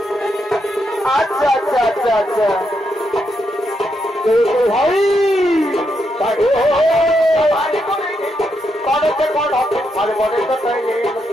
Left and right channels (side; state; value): both; normal; correlation 0.81